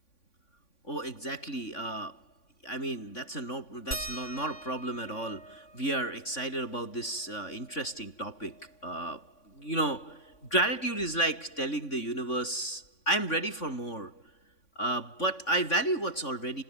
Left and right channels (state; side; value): late; right; 3.6 ms